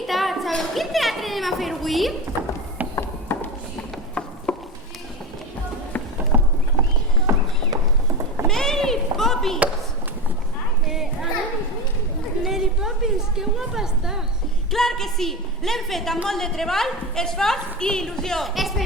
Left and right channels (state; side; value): normal; both; correlation 0.21